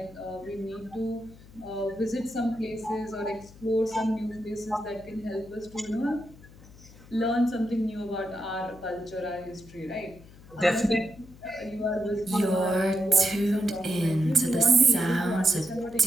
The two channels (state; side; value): noise; left; hum, 21 dB below the sound